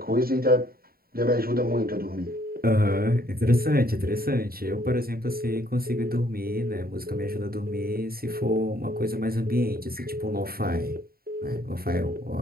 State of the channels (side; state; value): left; late; 0.44 ms